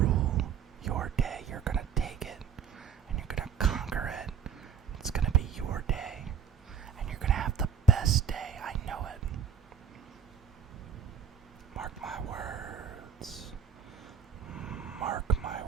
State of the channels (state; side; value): quieter; left; 7.4 dB